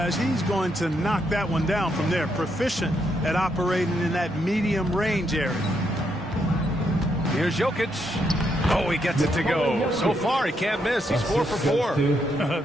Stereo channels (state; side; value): normal; both; correlation 0.78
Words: he's going to knock that one down from there. Proficient at operating in that medium range area. Here's Jokic. Oh, he gets it to go. So far, he can't miss. He's 4 for 4.